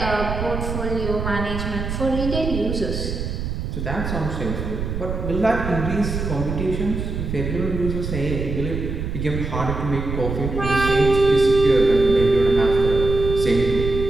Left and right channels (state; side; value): noise; right; rumble, 4 dB below the sound